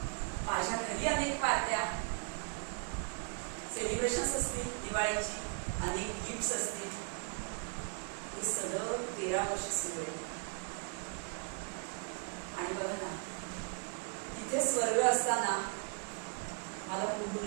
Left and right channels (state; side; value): quieter; left; 38.8 dB